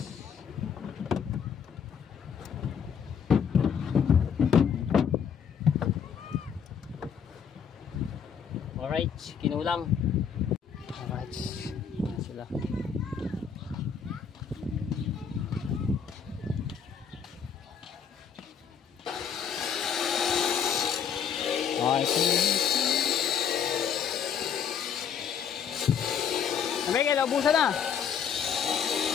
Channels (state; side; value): quieter; right; 7.4 dB